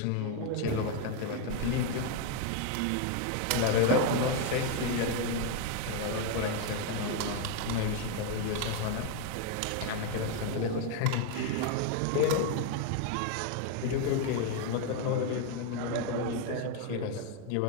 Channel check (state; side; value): different; both; correlation 0.01